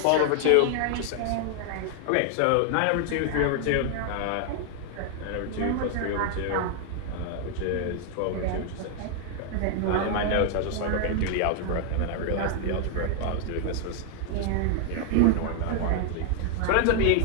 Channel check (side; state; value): both; different; correlation 0.00